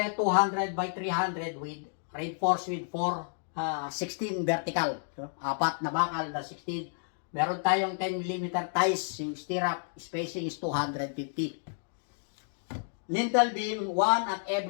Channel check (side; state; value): right; silent; digital silence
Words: 200 by 300 with reinforced with 16 vertical. So, 4 na bakal na 16. Meron tayong 10 mm ties. Yung stirrup spacing is 250. Lintel beam, 1 at